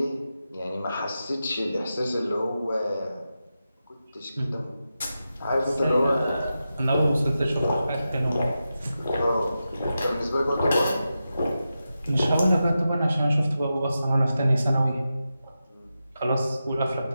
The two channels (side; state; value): both; inverted; correlation -0.90